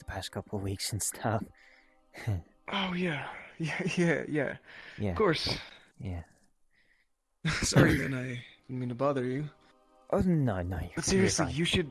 past couple of weeks and stuff. Oh yeah. Yeah. Of course. Yeah. Sorry, man. I didn't mean to bother you. Oh no, But seriously, you should.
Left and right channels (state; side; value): identical; both; correlation 1.00